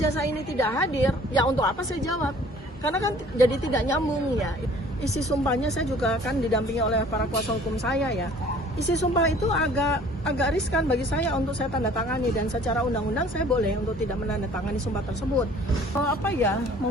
ini tidak hadir, ya untuk apa saya jawab? Karena kan jadi tidak nyambung ya. Isi sumpahnya saya juga kan didampingi oleh para kuasa hukum saya ya. Isi sumpah itu agak riskan bagi saya untuk saya tanda tangani, dan secara undang-undang saya boleh untuk tidak menandatangani sumpah tersebut.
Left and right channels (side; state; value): both; normal; correlation 0.52